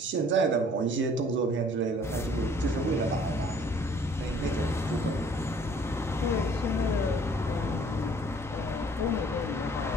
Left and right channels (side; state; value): both; normal; correlation 0.55